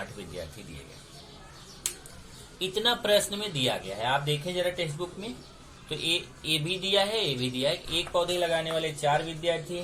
विद्यार्थी दिए गए। इतना प्रश्न में दिया गया है। आप देखें जरा टेक्स्ट बुक में, तो ए भी दिया है, ए भी दिया है। 1 पौधे लगाने वाले 4 विद्यार्थी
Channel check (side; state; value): both; identical; correlation 1.00